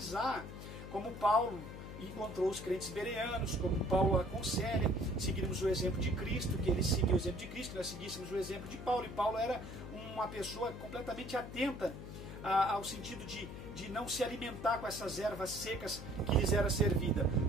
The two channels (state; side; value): noise; left; hum, 10 dB below the sound